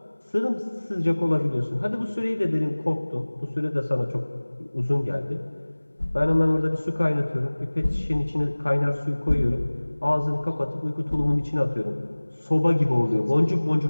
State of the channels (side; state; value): both; inverted; correlation -1.00